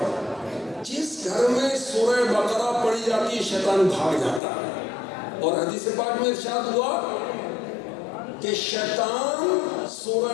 جس گھر میں سورہ بقرہ پڑھی جاتی ہے شیطان بھاگ جاتا ہے. اور حدیث پاک میں ارشاد ہوا کہ شیطان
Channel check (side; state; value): right; drops out; at 4.4 s